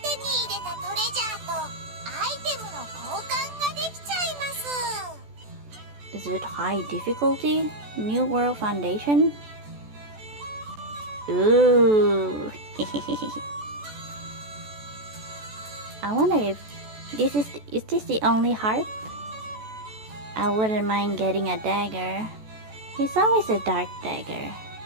Is it high difficulty? New World Foundation? Ooh. I wonder if this is this the only harp? I wouldn't mind getting a dagger. It's always a dark dagger.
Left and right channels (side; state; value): left; late; 14 ms